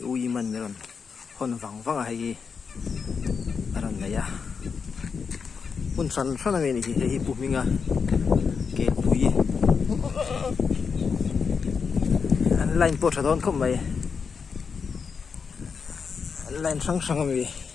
ui man meron hon wang hi aran na ya un san san mi ni hi pu minga ke pui an line po thadon khom mai an line sang mi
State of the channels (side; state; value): right; quieter; 5.8 dB